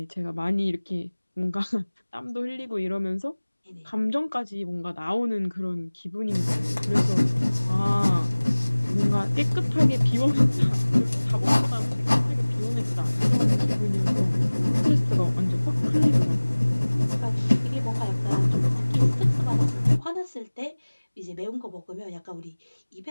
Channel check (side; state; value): both; inverted; correlation -1.00